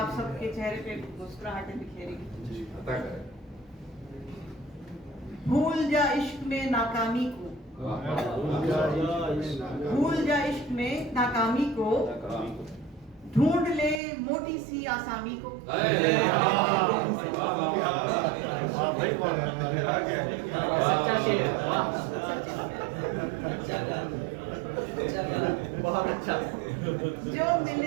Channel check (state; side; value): drops out; left; at 14.0 s